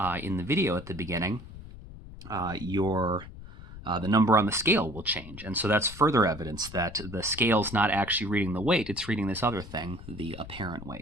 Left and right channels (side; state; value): left; noise; rumble, 15 dB below the sound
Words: in the video at the beginning, the number on the scale will change. And so that's further evidence that the scale's not actually reading the weight, it's reading this other thing, the apparent